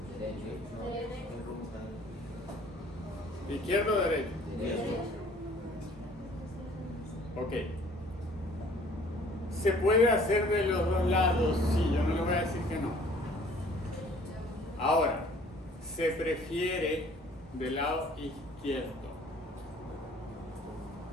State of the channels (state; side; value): normal; both; correlation 0.55